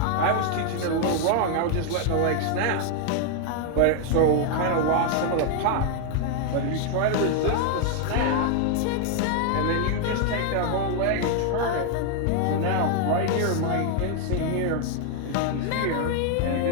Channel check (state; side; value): different; both; correlation 0.00